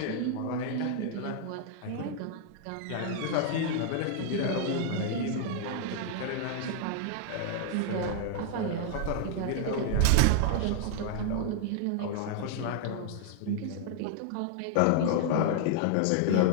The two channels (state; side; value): different; both; correlation 0.00